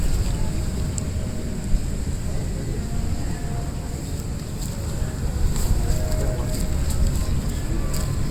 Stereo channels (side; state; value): both; identical; correlation 1.00